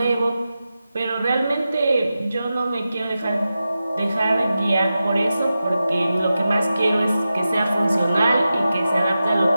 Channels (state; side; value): inverted; both; correlation -0.92